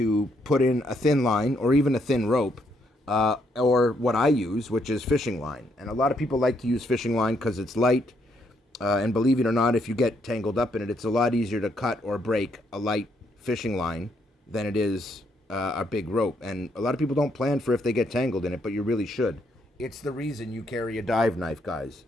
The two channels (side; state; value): both; normal; correlation 0.74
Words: put in a thin line or even a thin rope, or what I use, which is fishing line. And a lot of people like to use fishing line because it's light, and believe it or not, if you get tangled up in it, it's a lot easier to cut or break a light fishing line than it is a big rope. And a lot of people don't plan for if they get tangled in it, but you really should. It's the reason you carry a dive knife, guys,